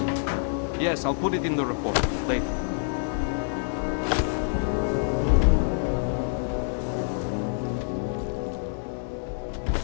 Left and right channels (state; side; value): silent; right; digital silence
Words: Yes, I'll put it in the report later.